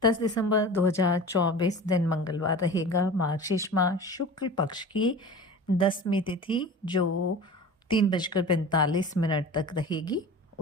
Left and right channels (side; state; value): both; normal; correlation 0.36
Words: 10 दिसंबर 2024 दिन मंगलवार रहेगा। मार्गशीर्ष माह शुक्ल पक्ष की 10वीं तिथि जो 3:45 तक रहेगी।